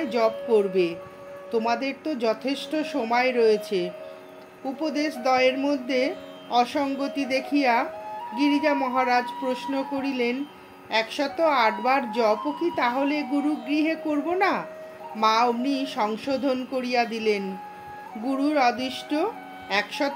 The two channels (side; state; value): both; identical; correlation 1.00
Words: जप करबे, तोमादेर तो यथेष्ट समय रयेछे। उपदेश दयेर मध्य असंगति देखिया गिरिजा महाराज प्रश्न करिलेन, 108 बार जप कि ताहले गुरुगृहे करब ना? मा अमनि संशोधन करिया दिलेन, गुरुर आदिष्ट